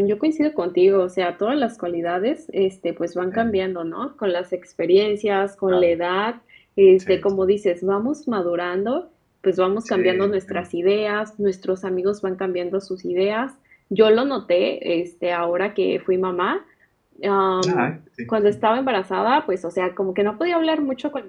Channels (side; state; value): both; identical; correlation 1.00